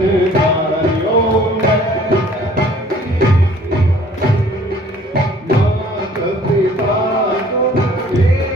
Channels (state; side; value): normal; both; correlation 0.54